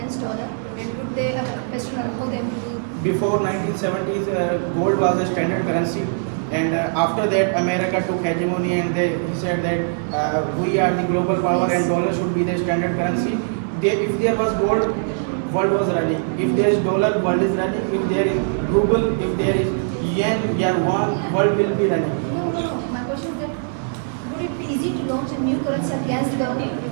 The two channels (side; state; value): left; silent; digital silence